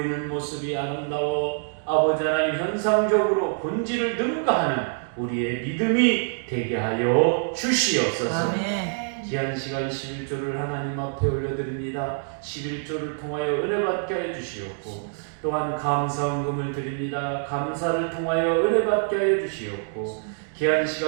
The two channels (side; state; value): left; silent; digital silence